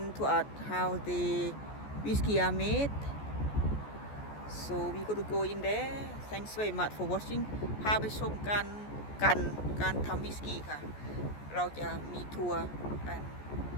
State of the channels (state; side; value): late; right; 14 ms